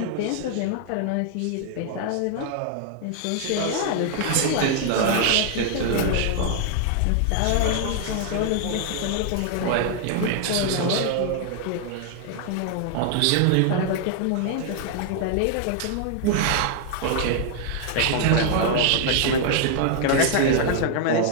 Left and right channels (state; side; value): different; both; correlation 0.00